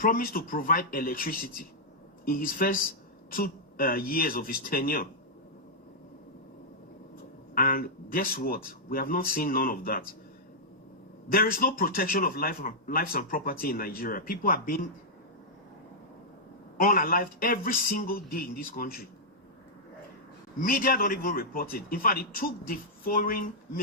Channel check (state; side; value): normal; both; correlation -0.08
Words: to provide electricity in his first 2 years of his tenure. And guess what? We have not seen none of that. There is no protection of lives and property in Nigeria. People are being unalived every single day in this country. Media don't even report it. In fact, it took the foreign